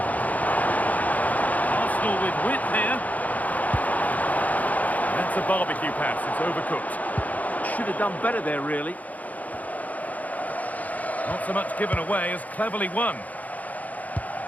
Arsenal with width here. That's a barbecue pass, it's overcooked. Should have done better there, really. Not so much given away as cleverly won.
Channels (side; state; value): right; late; 0.077 ms